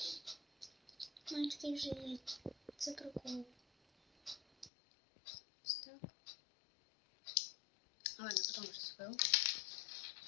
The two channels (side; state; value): right; drops out; at 4.7 s